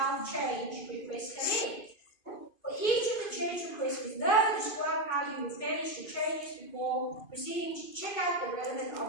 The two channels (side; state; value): right; late; 2.5 ms